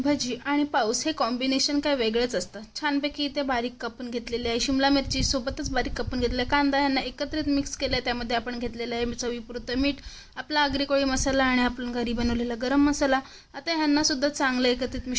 भजी आणि पाऊस हे कॉम्बिनेशन काय वेगळंच असतं। छानपैकी इथे बारीक कापून घेतलेली आहे शिमला मिरची, सोबतच बारीक कापून घेतलेला कांदा यांना एकत्रित मिक्स केलं आहे। त्यामध्ये आपण घेतलेलं आहे चवीपुरतं मीठ, आपला आगरी कोळी मसाला आणि आपण घरी बनवलेला गरम मसाला। आता ह्यांना सुद्धा चांगलं एकत्रित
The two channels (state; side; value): identical; both; correlation 1.00